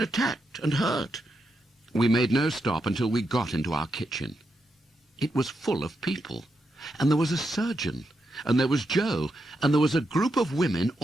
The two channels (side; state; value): both; normal; correlation 0.84